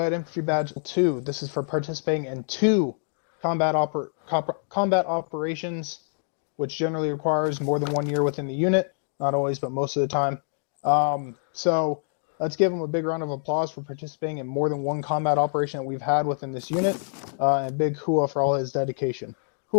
Infantry Badge 2. This is for participating in 2 combat operations, which generally requires more than 1 year within the unit. Not always, but most of the time. So let's give them a big round of applause for participating in more than 1 combat operation that we've had within this unit. And a big hua for all his dedication.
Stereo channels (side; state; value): right; silent; digital silence